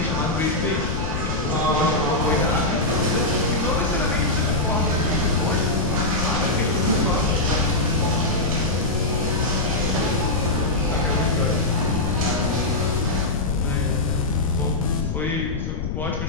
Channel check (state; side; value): noise; left; rumble, 3 dB below the sound